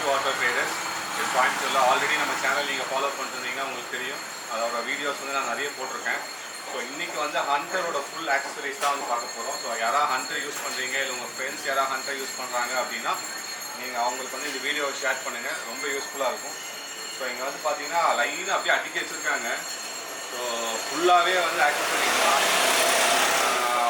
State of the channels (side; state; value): both; identical; correlation 1.00